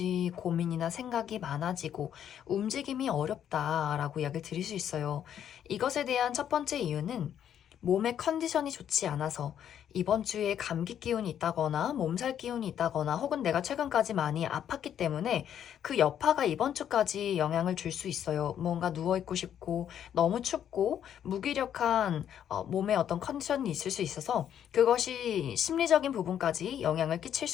고민이나 생각이 많아지고 움직임이 어렵다라고 이야기를 드릴 수 있어요. 이것에 대한 첫 번째 이유는 몸의 컨디션이 좋지 않아서 이번 주에 감기 기운이 있다거나 몸살 기운이 있다거나 혹은 내가 최근까지 많이 아팠기 때문에 그 여파가 이번 주까지 영향을 줄 수 있어요. 뭔가 누워있고 싶고 너무 춥고 무기력한 몸의 어떤 컨디션이 있을 수 있어서 그것이 심리적인 부분까지 영향을 끼칠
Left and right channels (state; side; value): quieter; right; 9.6 dB